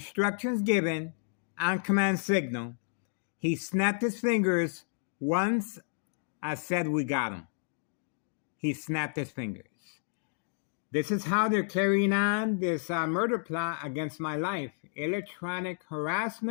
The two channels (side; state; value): right; silent; digital silence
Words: given on command signal. He snapped his fingers once I said we got him. He snapped his fingers. This is how they're carrying on this murder plot against my life. Electronic